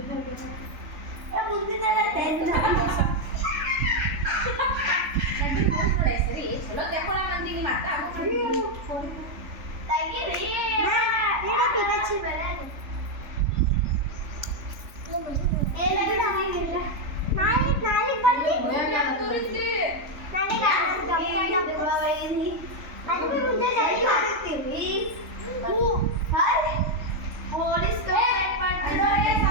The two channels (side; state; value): left; late; 3.4 ms